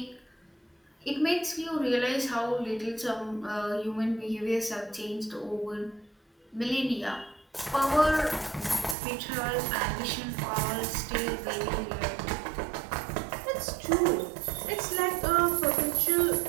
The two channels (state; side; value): drops out; left; at 9.0 s